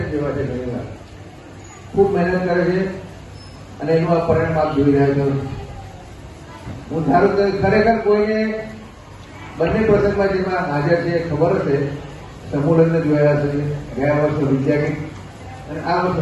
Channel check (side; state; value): both; identical; correlation 1.00